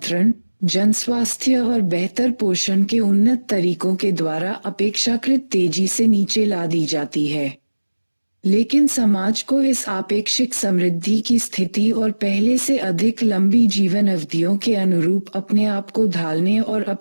जनस्वास्थ्य और बेहतर पोषण के उन्नत तरीकों के द्वारा अपेक्षाकृत तेजी से नीचे ला दी जाती है। लेकिन समाज को इस आपेक्षिक समृद्धि की स्थिति और पहले से अधिक लंबी जीवन अवधियों के अनुरूप अपने आप को ढालने और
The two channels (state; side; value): inverted; both; correlation -1.00